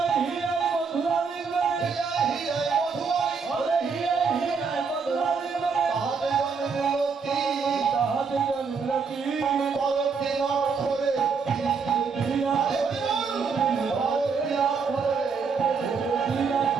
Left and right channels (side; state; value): left; quieter; 5.4 dB